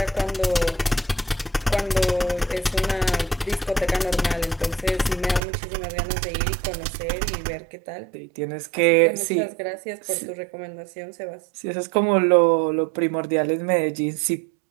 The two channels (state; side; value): drops out; left; at 5.4 s